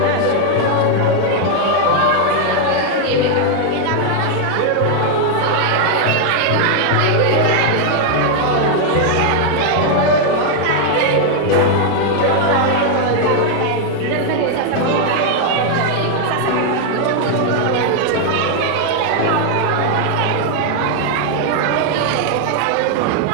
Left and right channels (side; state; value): both; different; correlation 0.00